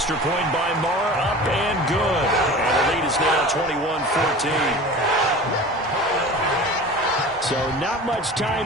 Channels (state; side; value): normal; both; correlation 0.37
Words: point by Marr, up and good. And the lead is now 21-14. So not much